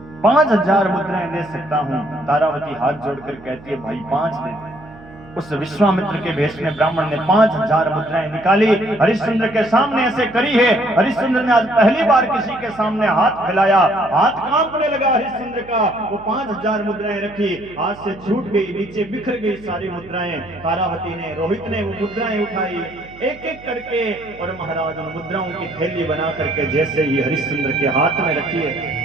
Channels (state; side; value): noise; right; hum, 20 dB below the sound